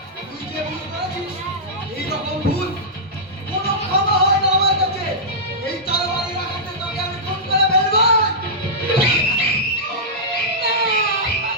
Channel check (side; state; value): both; normal; correlation -0.13